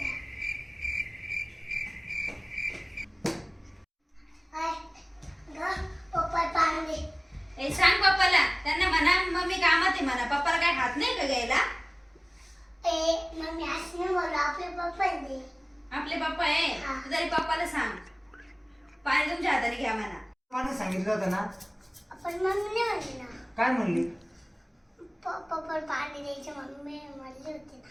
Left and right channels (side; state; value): both; identical; correlation 1.00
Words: आई, ग, पप्पा पाणी दे. ए सांग पप्पाला, त्यांना म्हणा मम्मी कामात आहे म्हणा. पप्पाला काय हात नाही का घ्यायला? ए मम्मी असं नाही बोलू आपले पप्पा दे. आपले पप्पा आहे हा. तू तरी पप्पाला सांग पाणी तुमच्या हाताने घ्या म्हणा. पाणी सांगितलं होतं ना? पण मम्मी नाही म्हणली ना. काय म्हणली? पप्पा पाणी द्यायचे मम्मी म्हणली होती